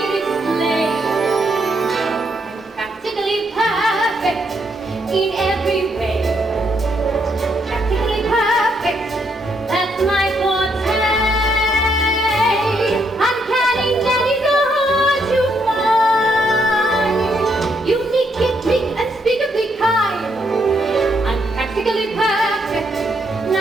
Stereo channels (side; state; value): both; normal; correlation 0.75